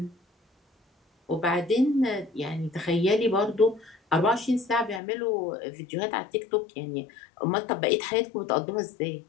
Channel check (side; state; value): right; drops out; at 5.0 s